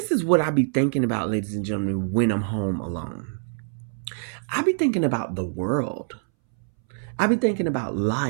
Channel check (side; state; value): left; silent; 62 dB below the other